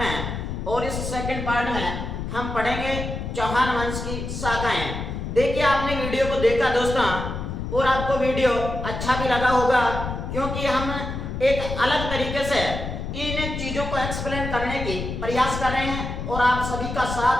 और इस सेकंड पार्ट में हम पढ़ेंगे चौहान वंश की शाखाएं। देखिए, आपने वीडियो को देखा दोस्तों और आपको वीडियो अच्छा भी लगा होगा, क्योंकि हम एक अलग तरीके से इन चीजों को एक्सप्लेन करने की प्रयास कर रहे हैं और आप सभी का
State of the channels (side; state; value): left; noise; rumble, 5 dB below the sound